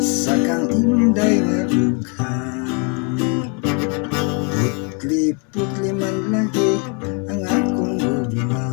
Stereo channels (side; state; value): right; quieter; 35.7 dB